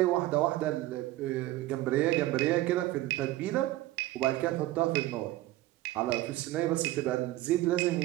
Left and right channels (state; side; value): quieter; left; 16.7 dB